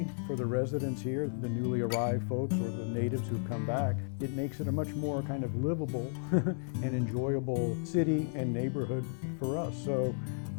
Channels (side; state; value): right; silent; 55 dB below the other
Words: for the residents here, the newly arrived folks or the natives who've come back, it makes it a much more kind of livable and enjoyable city and neighborhood for us. So